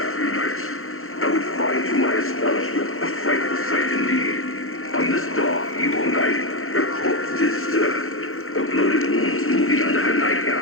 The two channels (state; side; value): late; right; 0.62 ms